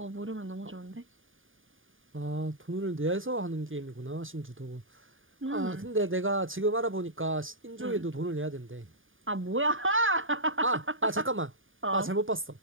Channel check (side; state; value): left; late; 0.58 ms